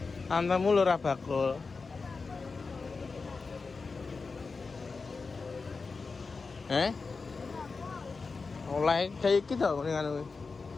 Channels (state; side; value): quieter; right; 4.4 dB